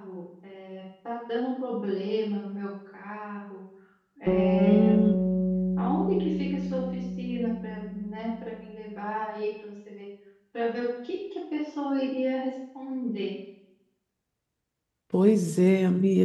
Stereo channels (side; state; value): both; identical; correlation 1.00